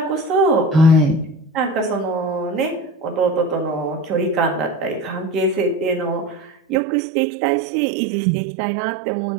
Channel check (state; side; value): drops out; left; at 6.8 s